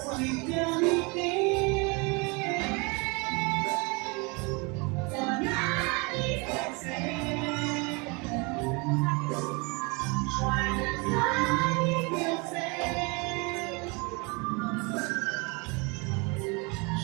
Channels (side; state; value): left; quieter; 29.4 dB